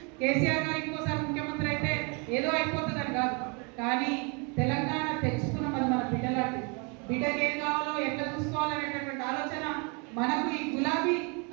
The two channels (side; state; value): left; quieter; 33.5 dB